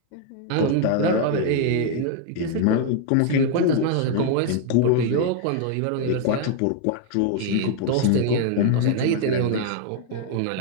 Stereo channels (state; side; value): different; both; correlation 0.00